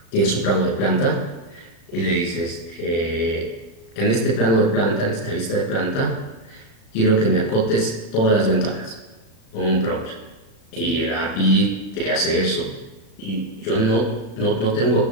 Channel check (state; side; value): late; right; 36 ms